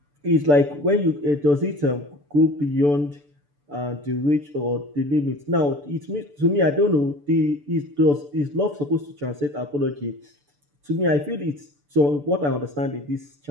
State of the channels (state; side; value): late; left; 6.9 ms